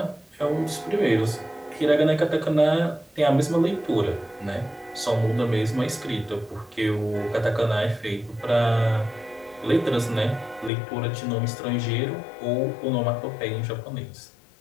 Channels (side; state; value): right; drops out; at 10.7 s